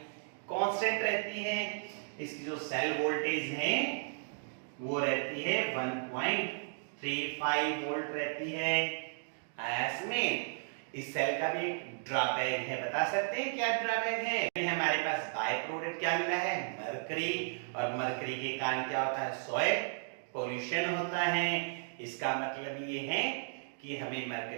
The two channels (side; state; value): left; silent; digital silence